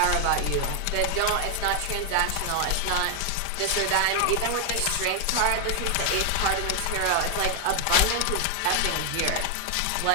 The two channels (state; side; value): different; both; correlation 0.00